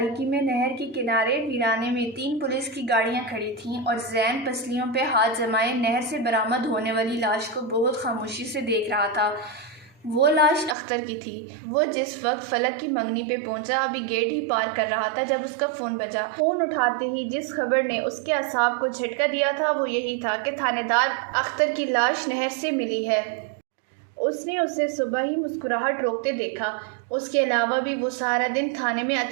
میں نہر کے کنارے ویرانے میں 3 پولیس کی گاڑیاں کھڑی تھیں اور زین پسلیوں پہ ہاتھ جمائے نہر سے برآمد ہونے والی لاش کو بہت خاموشی سے دیکھ رہا تھا۔ وہ لاش اختر کی تھی۔ وہ جس وقت فلک کی منگنی پہ پہنچا ابھی گیٹ ہی پار کر رہا تھا جب اس کا فون بجا۔ فون اٹھاتے ہی جس خبر نے اس کے اعصاب کو جھٹکا دیا تھا وہ یہی تھا کہ تھانے دار اختر کی لاش نہر سے ملی ہے۔ اس نے اسے صبح ہی مسکراہٹ روکتے دیکھا۔ اس کے علاوہ بھی وہ سارا دن تھانے میں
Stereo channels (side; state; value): left; drops out; at 10.8 s